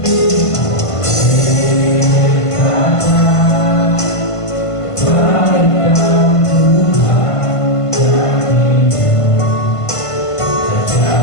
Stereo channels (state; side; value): late; right; 1.5 ms